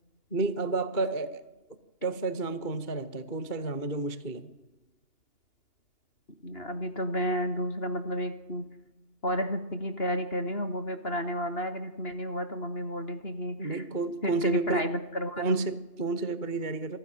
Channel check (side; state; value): right; late; 2.8 ms